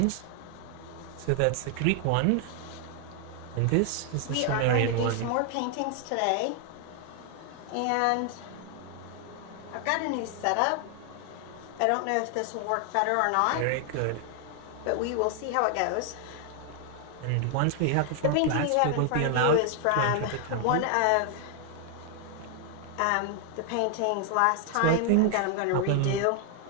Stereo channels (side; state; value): both; different; correlation 0.00